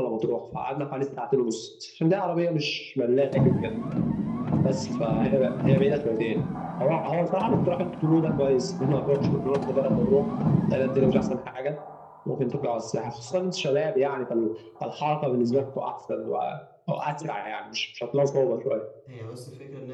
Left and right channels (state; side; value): identical; both; correlation 1.00